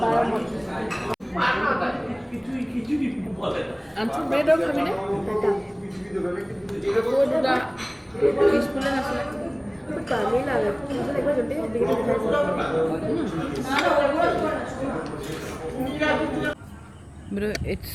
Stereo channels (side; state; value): both; identical; correlation 1.00